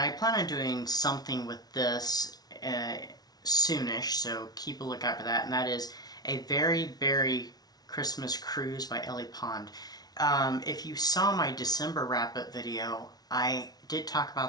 I plan on doing something with this soonish, so keep a lookout for that, and that is A Very Berry Christmas Cruise by Ellie Pond. If you saw my December wrap-up video, I did talk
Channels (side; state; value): right; late; 0.19 ms